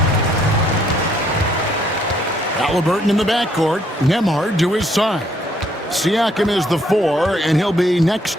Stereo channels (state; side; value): normal; both; correlation 0.68